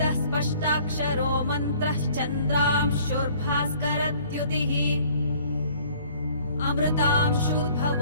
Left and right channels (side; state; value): both; inverted; correlation -0.55